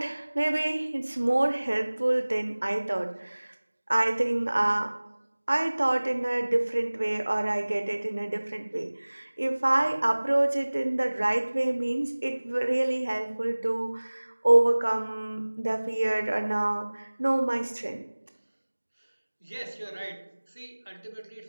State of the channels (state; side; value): inverted; both; correlation -1.00